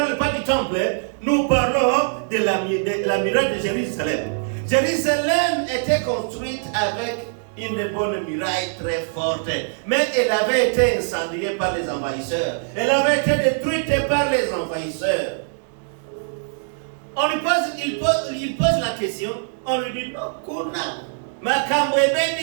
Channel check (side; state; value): left; silent; digital silence